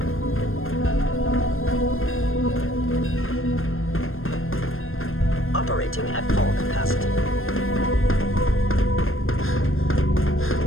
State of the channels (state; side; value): late; right; 0.60 ms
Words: Operating at full capacity.